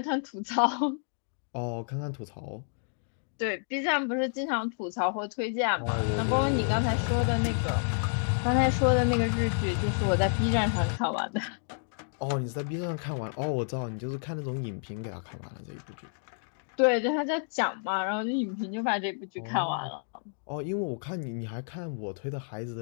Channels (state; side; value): silent; right; digital silence